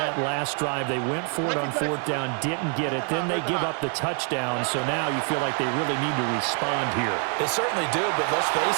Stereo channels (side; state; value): left; quieter; 38.7 dB